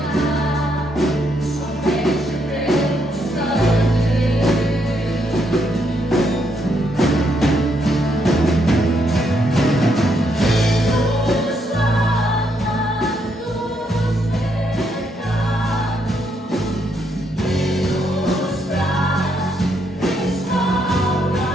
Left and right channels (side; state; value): both; normal; correlation 0.76